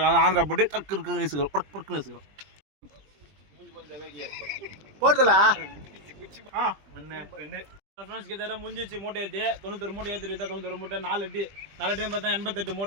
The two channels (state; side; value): late; left; 20 ms